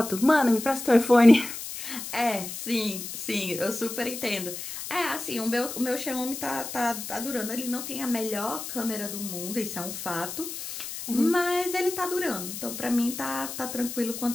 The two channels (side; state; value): left; noise; hiss, 8 dB below the sound